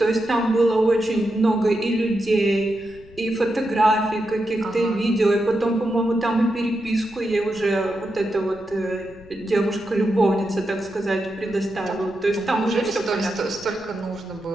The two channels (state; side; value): noise; left; rumble, 23 dB below the sound